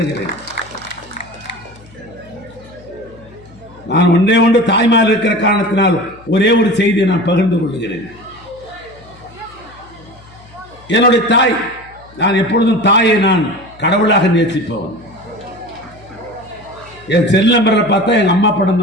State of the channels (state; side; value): noise; left; hum, 24 dB below the sound